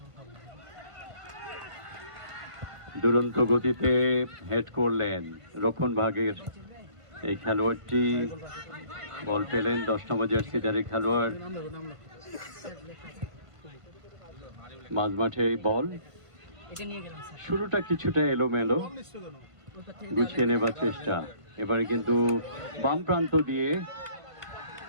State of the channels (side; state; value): left; late; 1.5 ms